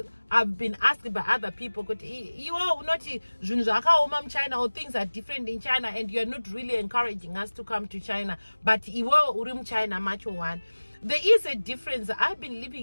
been asked by other people. Not China, or things are different in China, and you're not really encouraging us to come to China. But China much one. There is a difference. I've been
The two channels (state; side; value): inverted; both; correlation -1.00